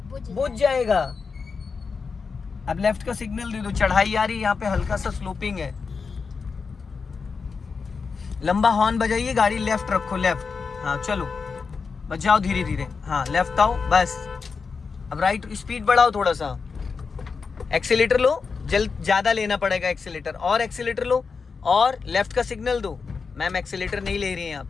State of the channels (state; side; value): quieter; right; 5.1 dB